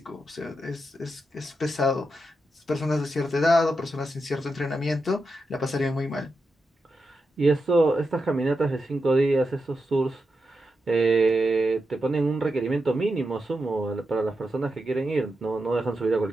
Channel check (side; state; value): both; normal; correlation 0.87